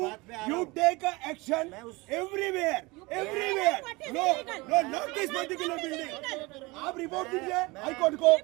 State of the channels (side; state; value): left; quieter; 24.0 dB